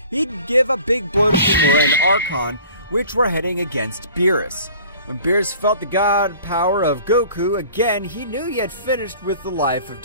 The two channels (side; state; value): both; inverted; correlation -0.47